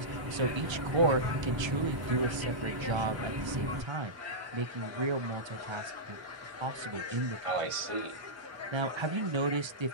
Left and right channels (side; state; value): left; late; 1.3 ms